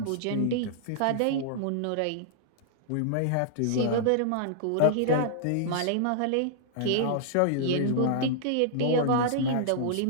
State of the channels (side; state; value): both; different; correlation -0.01